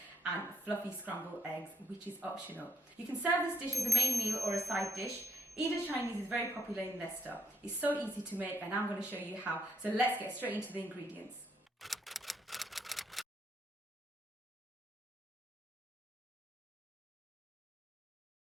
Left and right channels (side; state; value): both; normal; correlation 0.74